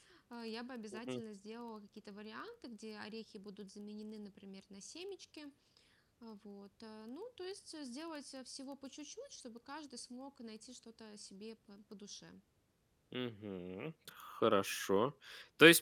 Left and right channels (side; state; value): both; identical; correlation 1.00